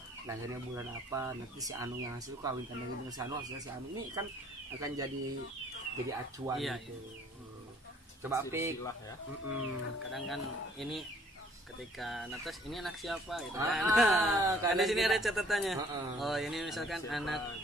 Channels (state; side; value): normal; both; correlation 0.58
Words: lahirnya bulan apa, nanti si Anu yang hasil kawin dengan si Anu, hasilnya si Anu. Ini kan akan jadi acuan Iya, gitu. Coba Pik. Silsilah ya. Kadang kan ini ketika netes ini anak siapa gitu kan. Ah, Kan di sini kita- ada catatannya. Heeh. Oh, ini misalkan anak